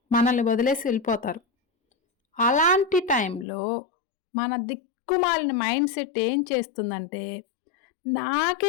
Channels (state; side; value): drops out; right; at 3.5 s